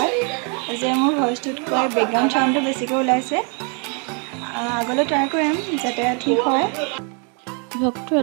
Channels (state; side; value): quieter; left; 37.0 dB